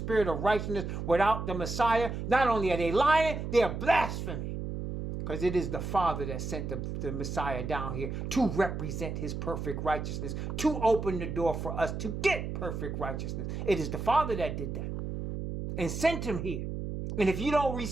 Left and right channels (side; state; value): right; noise; hum, 5 dB below the sound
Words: of righteousness without the Messiah, not only are they lying, they are blaspheming. Because it is the Father that sent the Messiah down here to represent his perfect righteousness, to open the door for us to get perfect righteousness. It is the Father that did that and sent him here. And if you don't